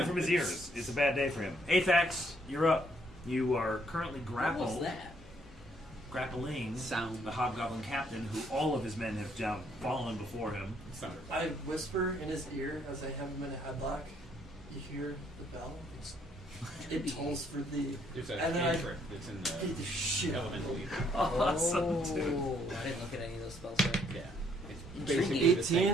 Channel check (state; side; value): normal; both; correlation 0.68